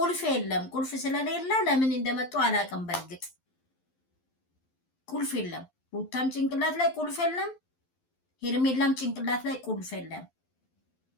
የለም። ቁልፍ ስለሌለ ለምን እንደመጡ አላውቅም። በእርግጥ ቁልፍ የለም። ሩታም ጭንቅላት ላይ ቁልፍ የለም። ሄርሜላም ጭንቅላት ላይ ቁልፍ የለም።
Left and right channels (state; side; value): late; right; 11 ms